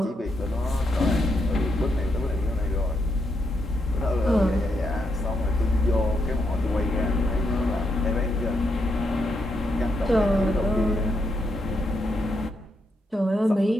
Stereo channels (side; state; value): both; normal; correlation 0.80